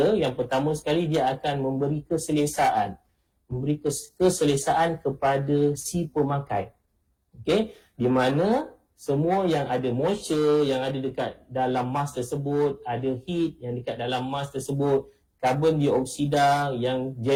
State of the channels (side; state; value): both; identical; correlation 1.00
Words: yang pertama sekali dia akan memberi keselesaan. Memberi keselesaan kepada si pemakai. Okay, di mana semua yang ada moisture yang ada dekat dalam mask tersebut, ada heat yang dekat dalam mask tersebut, karbon dioksida yang